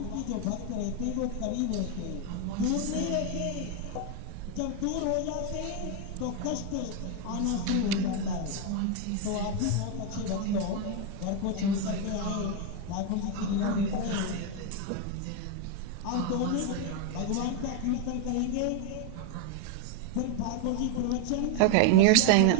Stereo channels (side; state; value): both; different; correlation 0.01